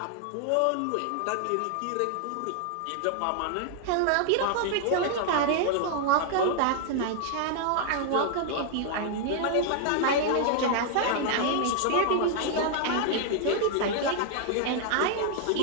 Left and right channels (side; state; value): both; different; correlation 0.00